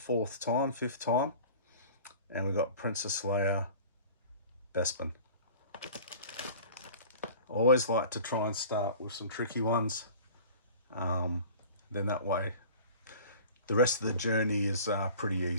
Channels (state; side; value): inverted; both; correlation -0.42